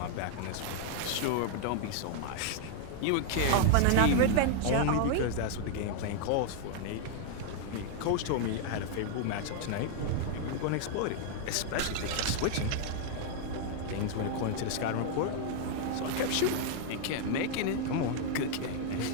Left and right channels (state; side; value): different; both; correlation 0.00